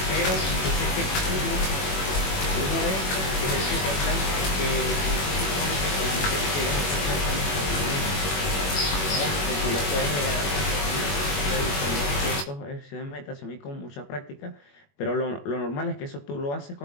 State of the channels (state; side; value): late; right; 21 ms